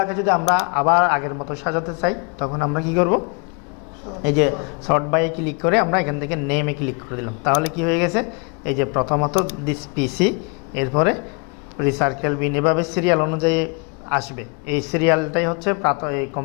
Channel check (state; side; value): quieter; right; 34.1 dB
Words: যদি আমরা আবার আগের মতো সাজাতে চাই, তখন আমরা কি করব, এই যে সর্ট বাইয়ে ক্লিক করে আমরা এখান থেকে নেমে ক্লিক করে দিলাম, তাহলে কি হয়ে গেছে, এই যে প্রথমত দিস পিসি, এরপরে রিসার্কেল বিন, এভাবে সিরিয়াল অনুযায়ী আসবে। এই সিরিয়ালটাই হচ্ছে এই